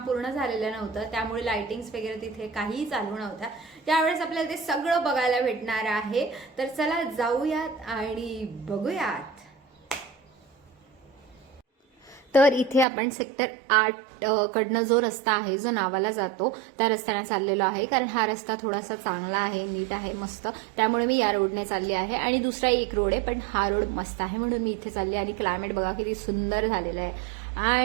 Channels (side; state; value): left; drops out; at 12.9 s